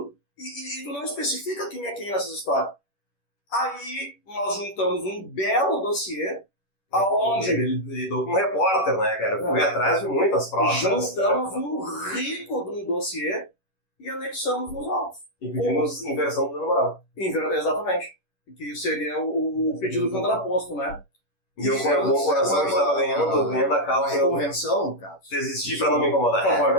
e tu não especifica quem é quem nessas histórias. Aí nós juntamos um belo dossiê, aonde... Ele lidou com um repórter, né, cara? Fui atrás de muitas provas. Juntamos um rico de um dossiê e anexamos nos autos. E pedimos inversão do dano moral. Exatamente. Que seria o pedido contraposto, né? E eu, com o bom coração, estava ganhando a causa. Uma convenção, no caso. Desistir para não me incomodar. Por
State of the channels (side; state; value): right; late; 10 ms